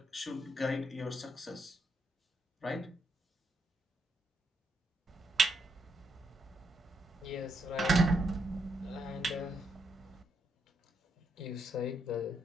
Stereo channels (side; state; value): both; normal; correlation 0.79